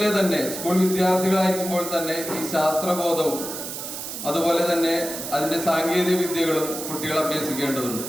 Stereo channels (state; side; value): noise; right; hiss, 7 dB below the sound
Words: തന്നെ സ്കൂൾ വിദ്യാർത്ഥികളായിരിക്കുമ്പോൾ തന്നെ ഈ ശാസ്ത്രബോധവും അതുപോലെ തന്നെ അതിന്റെ സാങ്കേതിക വിദ്യകളും കുട്ടികൾ അഭ്യസിക്കേണ്ടതുണ്ട്.